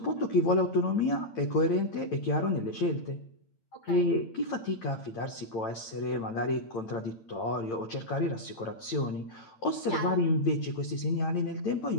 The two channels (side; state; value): right; late; 8.8 ms